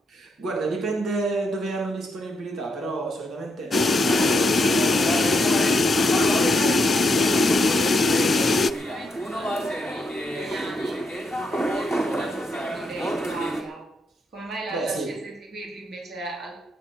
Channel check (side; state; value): both; normal; correlation 0.79